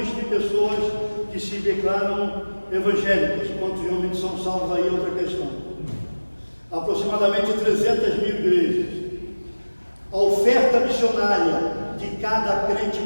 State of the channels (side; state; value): both; inverted; correlation -1.00